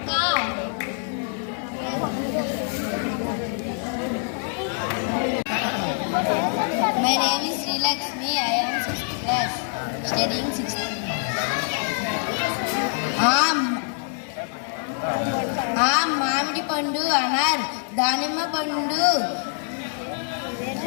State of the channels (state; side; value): silent; right; 58 dB below the other